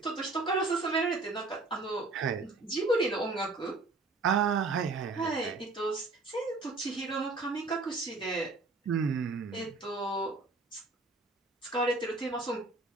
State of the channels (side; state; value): left; quieter; 3.5 dB